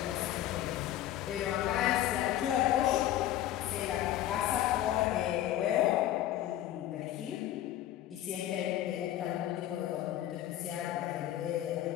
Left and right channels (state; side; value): quieter; right; 13.0 dB